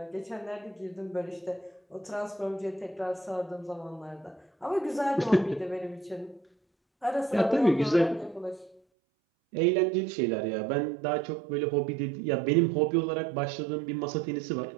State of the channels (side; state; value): left; drops out; at 8.8 s